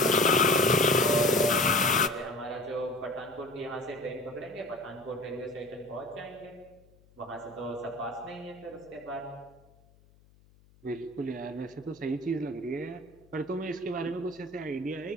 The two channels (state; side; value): noise; left; hum, 29 dB below the sound